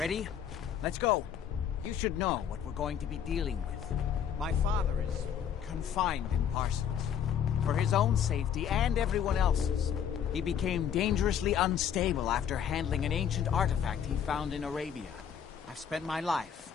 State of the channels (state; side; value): quieter; right; 8.6 dB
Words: Let's go. You should know what we're going to be dealing with. My father is confined in Parsons. For his own safety and everyone else's. He became dangerously unstable after handling an ancient artifact he found in Arabia. I've spent my life